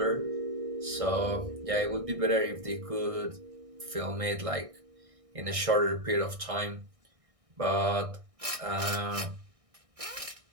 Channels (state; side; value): late; left; 1.6 ms